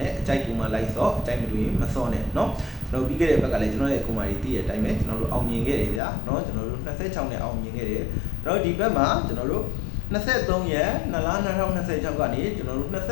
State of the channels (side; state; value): right; drops out; at 6.0 s